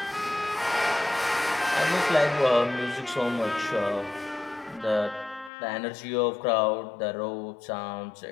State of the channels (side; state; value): right; drops out; at 5.5 s